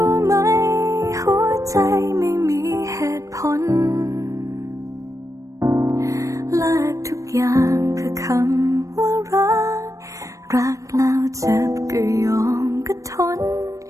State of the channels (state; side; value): late; left; 0.16 ms